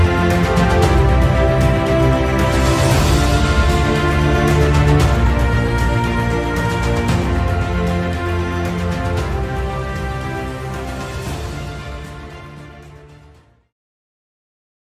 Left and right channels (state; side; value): identical; both; correlation 1.00